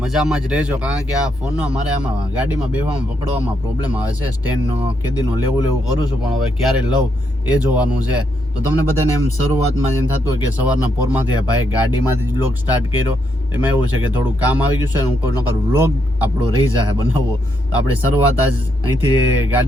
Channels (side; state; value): both; normal; correlation 0.78